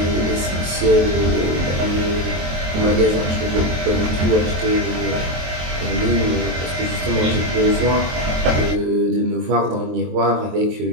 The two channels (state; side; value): late; left; 23 ms